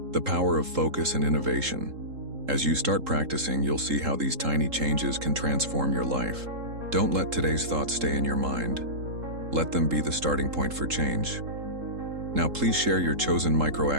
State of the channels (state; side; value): late; left; 3.8 ms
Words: the power of focus and innovation. As you start practicing, you'll see how these tiny changes can transform your life. Don't let today's thoughts stay in your mind. Let them be the starting point for change. Now please share your chosen